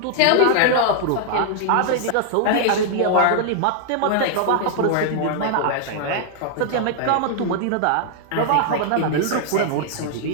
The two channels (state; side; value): different; both; correlation -0.01